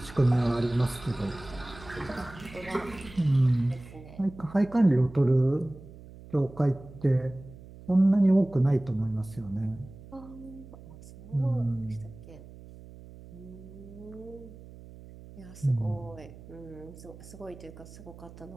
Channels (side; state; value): right; noise; hum, 18 dB below the sound